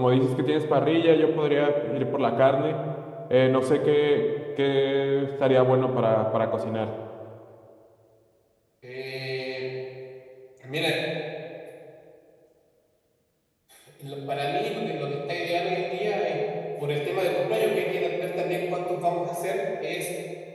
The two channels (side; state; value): both; identical; correlation 1.00